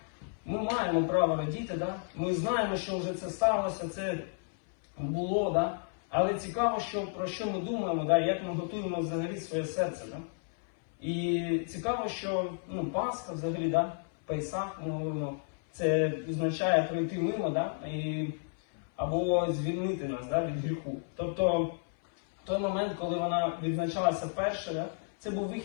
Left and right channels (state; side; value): silent; right; 56 dB below the other